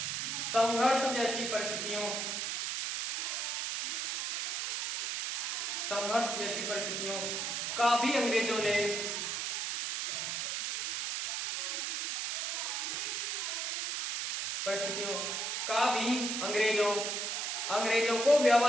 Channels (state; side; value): noise; right; hiss, 1 dB below the sound